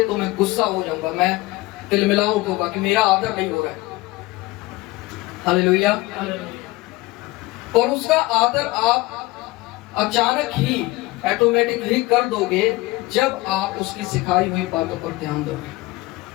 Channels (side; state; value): right; quieter; 20.3 dB